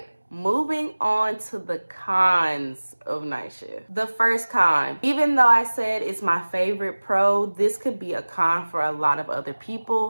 moving on to the cons of night shift. The first con, even though I said it's my favorite pro, this could be a con for a lot of other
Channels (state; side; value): inverted; both; correlation -1.00